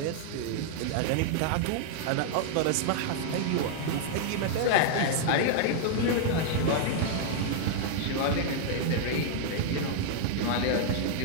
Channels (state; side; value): different; both; correlation -0.01